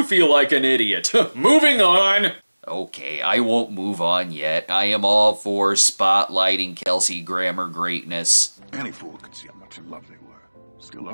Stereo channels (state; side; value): inverted; both; correlation -1.00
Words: feel like an idiot? Moving on! Okay, I won't move on yet. I am all for spotlighting Kelsey Grammer greatness. Any fool could see how much in love they were. Still